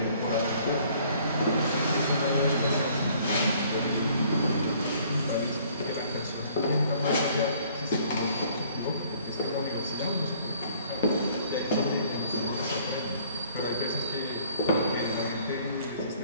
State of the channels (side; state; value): both; inverted; correlation -0.58